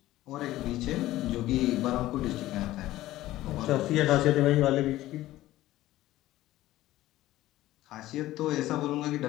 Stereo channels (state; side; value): quieter; right; 15.6 dB